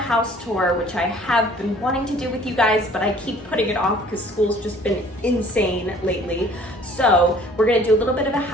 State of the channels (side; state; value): both; normal; correlation 0.53